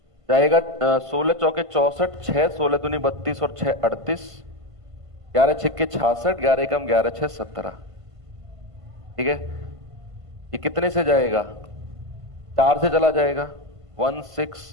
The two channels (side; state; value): left; late; 1.5 ms